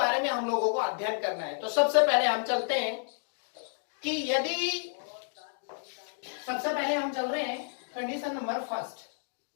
में हम लोगों को अध्ययन करना है। तो सबसे पहले हम चलते हैं कि यदि, सबसे पहले हम चल रहे हैं कंडीशन नंबर फर्स्ट,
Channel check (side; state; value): right; silent; 57 dB below the other